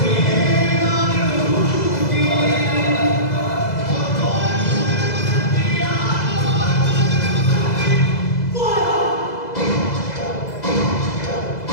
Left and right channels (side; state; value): right; late; 2.0 ms